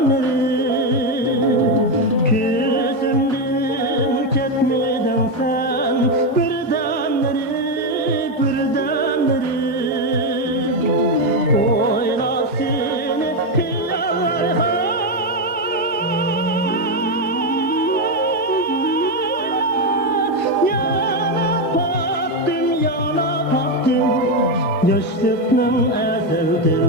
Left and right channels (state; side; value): normal; both; correlation 0.08